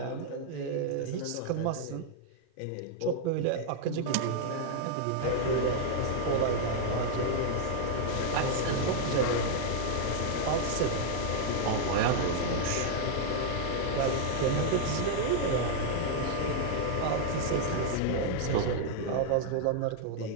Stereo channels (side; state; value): both; different; correlation 0.00